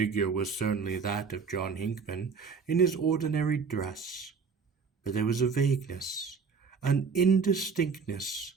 was certainly that of John Hinckman in his ordinary dress, but there was a vagueness, an indistinctness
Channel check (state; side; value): quieter; left; 5.4 dB